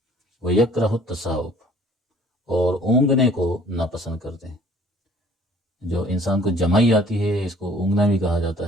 وَيَكْرَهُ التَّثَاؤُبَ، اور اونگنے کو ناپسند کرتے ہیں۔ جو انسان کو جمائی آتی ہے اس کو اونگنا بھی کہا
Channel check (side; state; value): both; normal; correlation 0.54